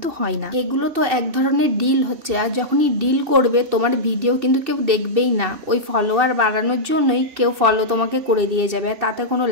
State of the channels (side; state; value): left; late; 2.7 ms